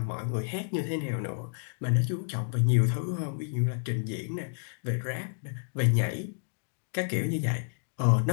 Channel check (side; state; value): right; silent; digital silence